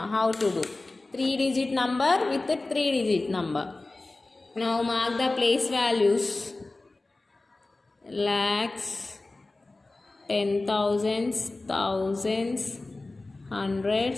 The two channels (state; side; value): quieter; right; 3.1 dB